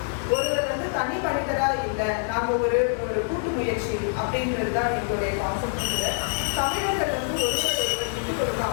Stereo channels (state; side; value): silent; right; 61 dB below the other